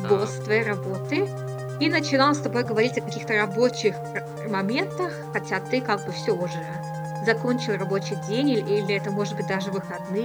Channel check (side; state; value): both; identical; correlation 1.00